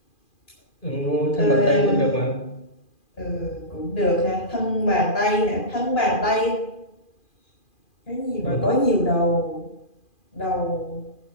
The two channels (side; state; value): right; late; 2.4 ms